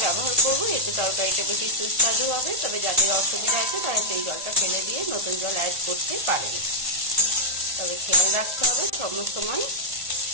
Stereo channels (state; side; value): late; left; 1.5 ms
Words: ব্যবহার করব। এতে তরকারিটা বেশি সুস্বাদু হবে। তবে যাদের অসুবিধা আছে তারা সেই জলটা ফেলে দিয়ে নতুন জল অ্যাড করতে পারেন। তবে খেয়াল রাখতে হবে সময়